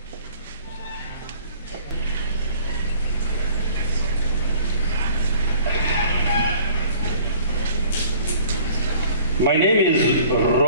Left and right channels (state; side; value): inverted; both; correlation -0.51